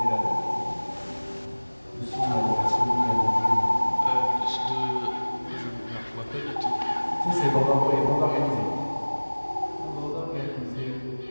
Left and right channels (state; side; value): inverted; both; correlation -1.00